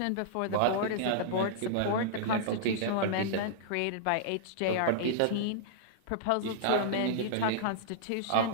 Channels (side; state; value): both; different; correlation -0.02